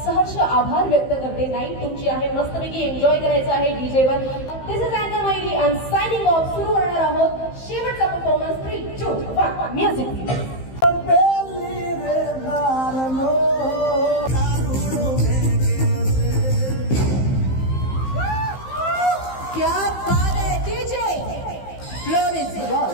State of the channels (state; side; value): late; right; 15 ms